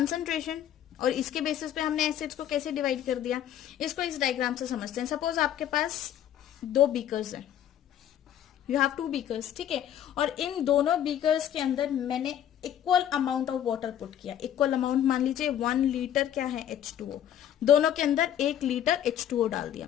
और इसके बेसिस पे हमने एसिड्स को कैसे डिवाइड कर दिया, इसको इस डायग्राम से समझते हैं। सपोज आपके पास 2 बीकर्स हैं, यू हैव 2 बीकर्स, ठीक है, और इन दोनों बीकर्स के अंदर मैंने equal amount of water put किया। इक्वल अमाउंट मान लीजिए 1 लीटर क्या है, H2O, दोनों के अंदर 1 लीटर H2O डाल दिया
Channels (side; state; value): right; quieter; 10.6 dB